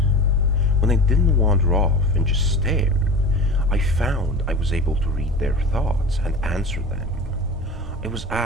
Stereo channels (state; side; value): normal; both; correlation 0.34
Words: When I didn't wander off and just stared, I found I was able to read their thoughts and answer them. I was